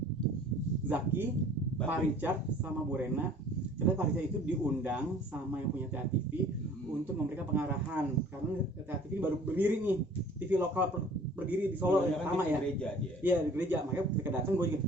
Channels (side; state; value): both; normal; correlation 0.50